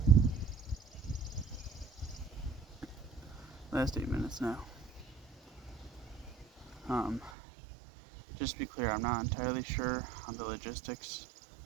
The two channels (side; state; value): left; drops out; at 7.3 s